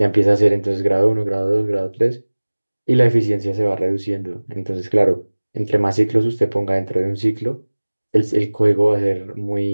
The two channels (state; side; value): inverted; both; correlation -1.00